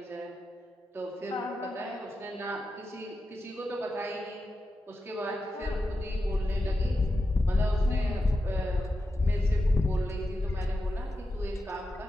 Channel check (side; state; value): both; normal; correlation 0.89